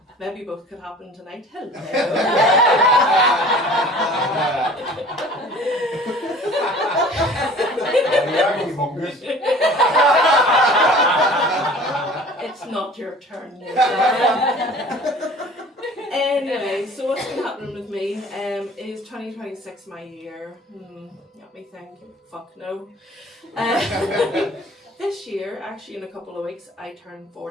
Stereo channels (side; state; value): both; normal; correlation 0.46